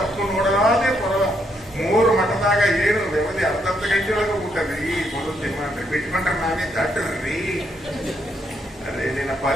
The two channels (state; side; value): normal; both; correlation 0.75